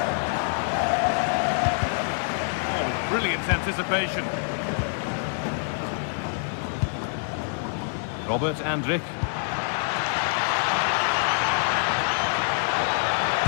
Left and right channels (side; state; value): right; silent; digital silence